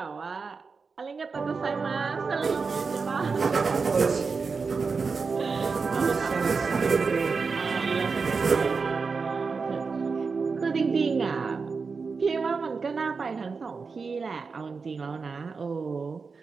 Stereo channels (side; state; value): left; quieter; 4.8 dB